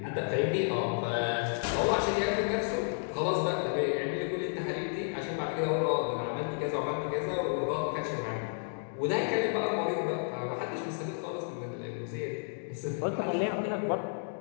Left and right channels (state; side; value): silent; right; digital silence